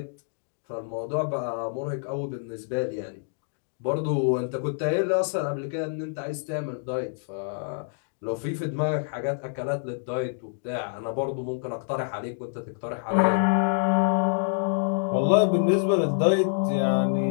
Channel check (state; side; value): silent; right; digital silence